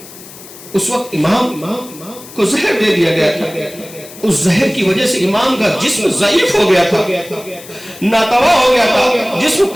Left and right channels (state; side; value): noise; left; hiss, 18 dB below the sound